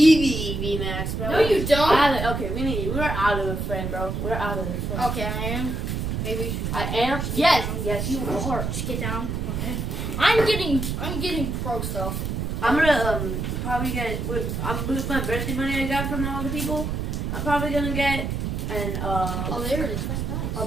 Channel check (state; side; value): noise; right; rumble, 2 dB below the sound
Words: VMAX, bro. No, you don't. I have it. Okay, we're out of the frame, bro. We're out of the frame. Okay, I am. Maybe. I am. Yes, you are. Just get down. Okay. I'm getting pro stuff. I'm gonna probably get. With my birthday money I got from all the people, I'm probably gonna get Oh, there it is. That's nice. a